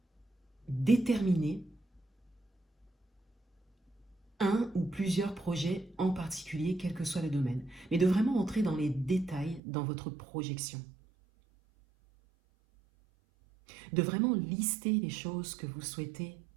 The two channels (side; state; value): left; drops out; at 9.6 s